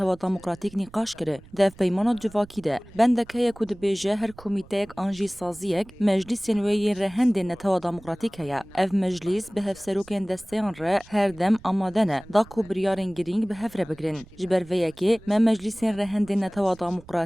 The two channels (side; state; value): right; noise; rumble, 22 dB below the sound